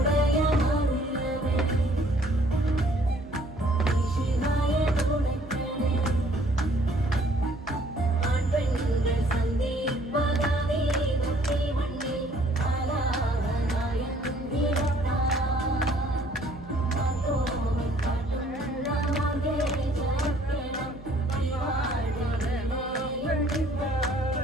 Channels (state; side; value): noise; right; hum, 18 dB below the sound